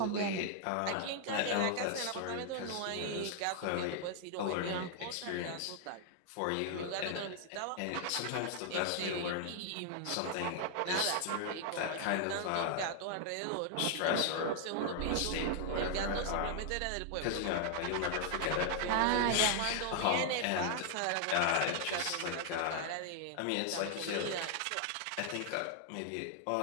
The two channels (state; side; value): different; both; correlation 0.00